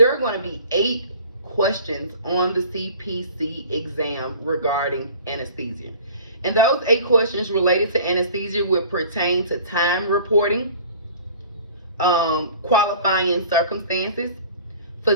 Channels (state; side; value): inverted; both; correlation -0.46